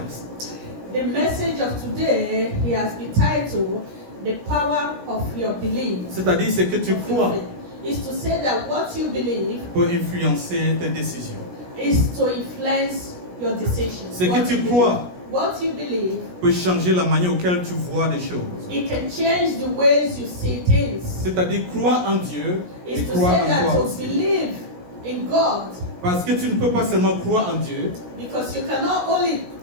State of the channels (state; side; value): late; left; 17 ms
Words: The message of today, he has been titled The Power of Your Belief. C'est-à-dire ce que tu crois Is to say that what you believe peut influencer tes décisions. is to influence your decisions. Ce que What tu you crois believe. What you believe, peut changer la manière auquel tu vois les choses. it can change the ways you see things. C'est-à-dire croire en Dieu et Is to croire say en that toi to aussi. believe in God, Parce que tu ne peux pas seulement croire en Dieu because you cannot only